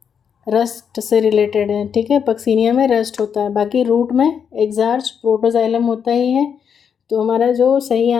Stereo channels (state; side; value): quieter; right; 7.3 dB